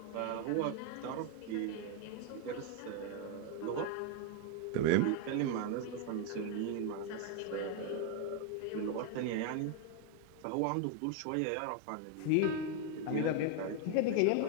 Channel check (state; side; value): different; both; correlation 0.01